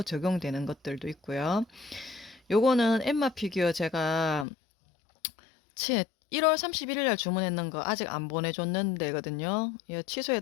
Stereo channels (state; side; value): drops out; right; at 4.5 s